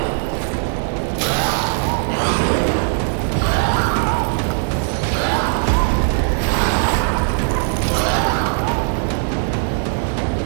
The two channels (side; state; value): left; silent; digital silence